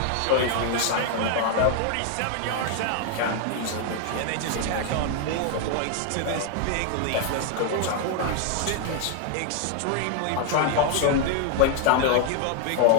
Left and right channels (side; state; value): both; different; correlation 0.00